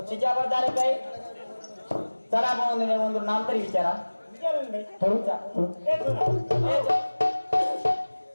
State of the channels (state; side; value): inverted; both; correlation -1.00